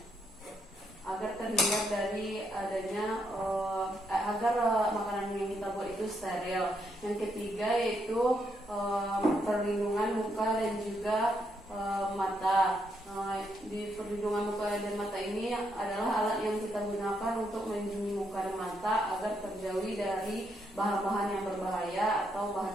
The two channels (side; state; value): both; normal; correlation 0.77